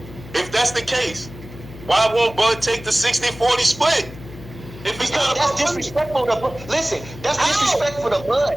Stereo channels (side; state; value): left; noise; hum, 15 dB below the sound